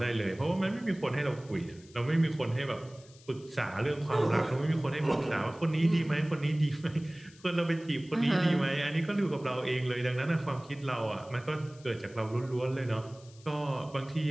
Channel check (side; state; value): left; noise; hiss, 25 dB below the sound